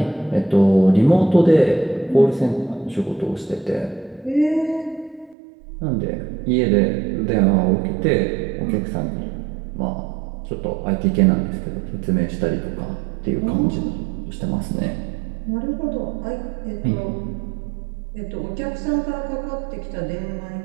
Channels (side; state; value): left; drops out; at 5.4 s